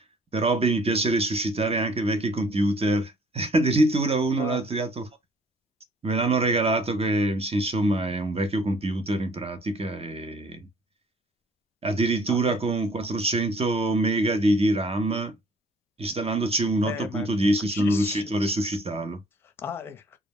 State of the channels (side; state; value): both; normal; correlation 0.58